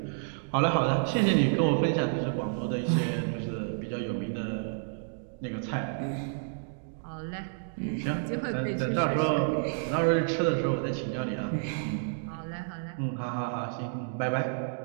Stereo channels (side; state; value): left; silent; digital silence